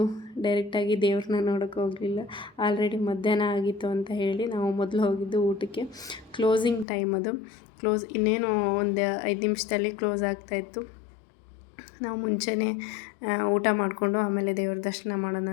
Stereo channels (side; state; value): right; drops out; at 6.9 s